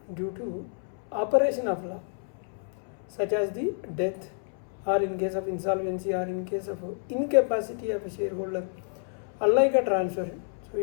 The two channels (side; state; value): right; silent; 58 dB below the other